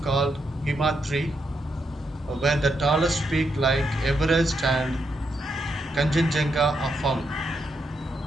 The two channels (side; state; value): both; normal; correlation 0.81